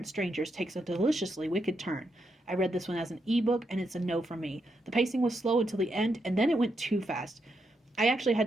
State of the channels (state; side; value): normal; both; correlation 0.82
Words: strangers takes a deliciously wicked turn. I read this one as an ebook, and it's a no from me. The pacing was slow until the end, and then it went too fast. I actually had